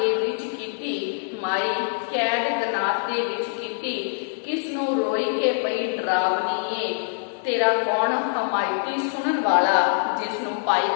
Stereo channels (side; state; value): right; silent; digital silence